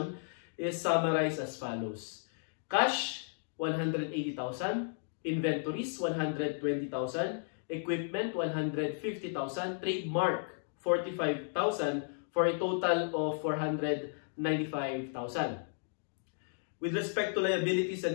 is summarized as follows. Cash, 180,000. Inventories, 120,000. Equipment, 150,000. Trademark, 45,000 for a total of 495,000. With respect to liabilities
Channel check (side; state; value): right; silent; digital silence